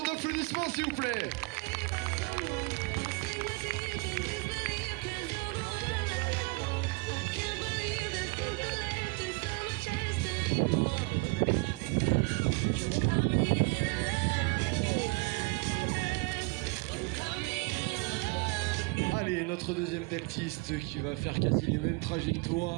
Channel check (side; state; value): left; quieter; 28.1 dB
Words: d'applaudissements, s'il vous plaît. Allez, notre deuxième deltiste qui va faire quasi les mêmes